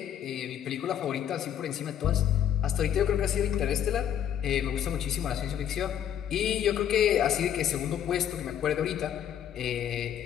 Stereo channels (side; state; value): right; quieter; 9.7 dB